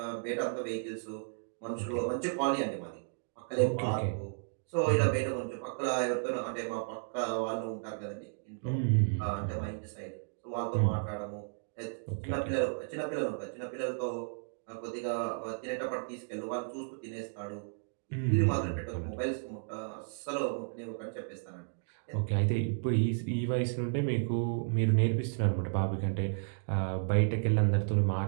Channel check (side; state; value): left; silent; digital silence